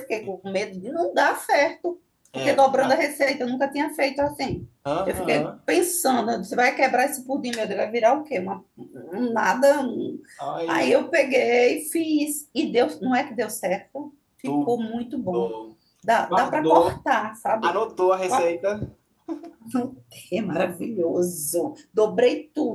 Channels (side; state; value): both; identical; correlation 1.00